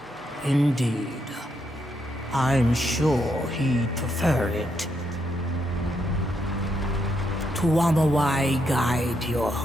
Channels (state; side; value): normal; both; correlation 0.78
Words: Indeed, I'm sure he'd prefer it. Tuamawai guide your